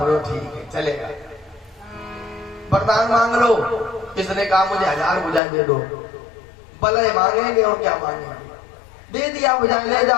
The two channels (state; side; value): drops out; right; at 5.4 s